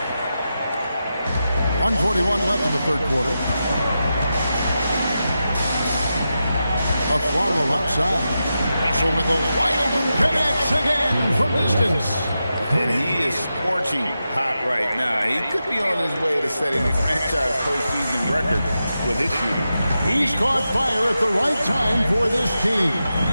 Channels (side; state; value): both; inverted; correlation -0.89